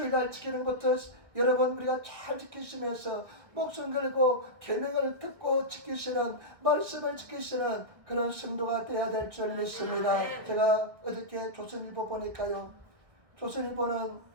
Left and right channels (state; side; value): late; left; 1.4 ms